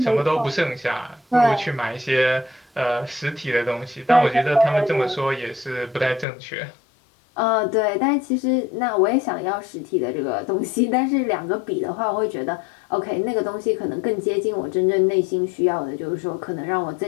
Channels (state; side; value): drops out; right; at 6.2 s